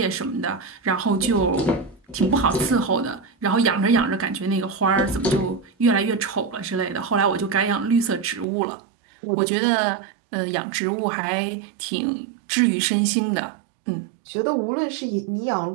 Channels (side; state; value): left; drops out; at 8.5 s